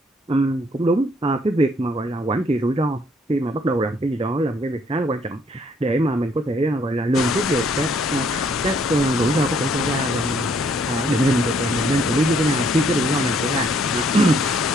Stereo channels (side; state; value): both; normal; correlation 0.66